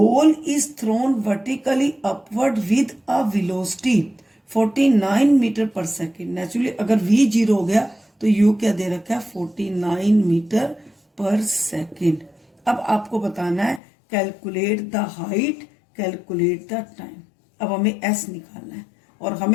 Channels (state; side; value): drops out; right; at 13.8 s